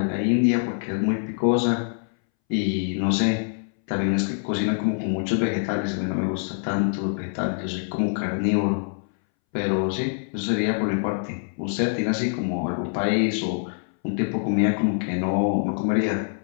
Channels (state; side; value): silent; right; 62 dB below the other